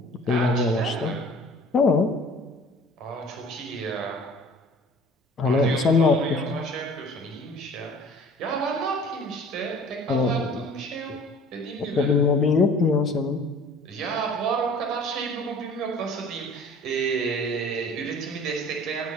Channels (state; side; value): normal; both; correlation 0.48